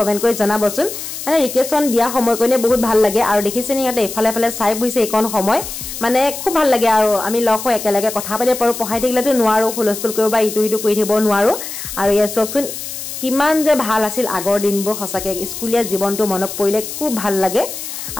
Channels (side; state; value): left; noise; hiss, 8 dB below the sound